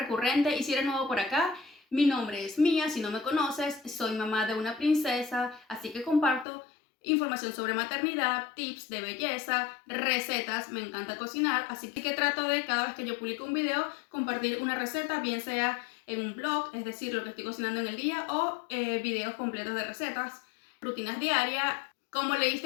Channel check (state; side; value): drops out; right; at 6.5 s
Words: y si eres nuevo por acá. Mi nombre es Mía, si no me conoces, soy mamá de una princesa, así que comparto información sobre maternidad, tips de belleza, recetas, me encanta cocinar, así que trato de cada vez que yo publico un video compartir una receta, bien sea en un blog, es decir, lo que estoy cocinando en el día, o videos completos de recetas, rutinas diarias. Como